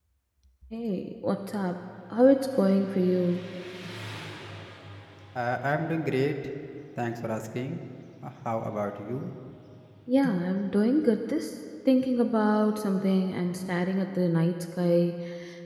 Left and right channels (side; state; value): both; identical; correlation 1.00